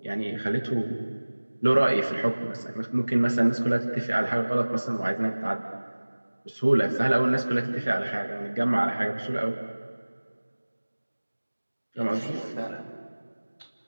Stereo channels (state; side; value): inverted; both; correlation -1.00